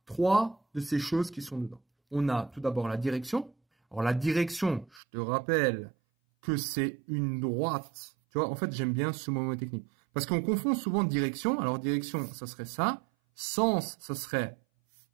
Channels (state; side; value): drops out; left; at 5.0 s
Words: trois de ces choses qui sont dedans. On a tout d'abord la direction. Alors la direction, je te rappelle que c'est une droite. Tu vois, en fait, j'aime bien ce mot technique. Parce qu'on confond souvent direction. Alors direction, ça serait ça. Sens, ça serait